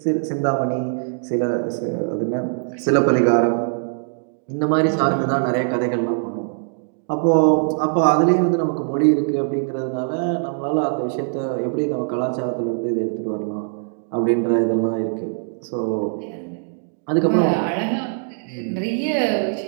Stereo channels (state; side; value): silent; left; digital silence